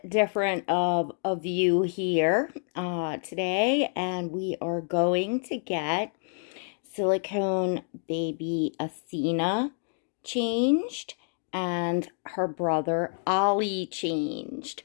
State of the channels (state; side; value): silent; right; 59 dB below the other